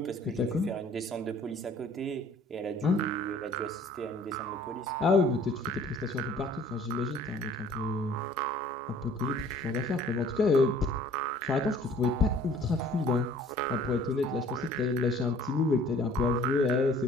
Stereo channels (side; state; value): both; normal; correlation 0.53